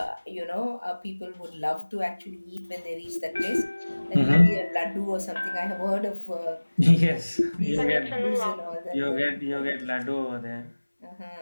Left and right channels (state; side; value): inverted; both; correlation -1.00